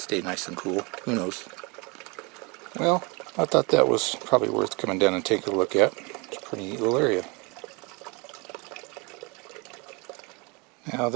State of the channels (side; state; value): left; quieter; 28.9 dB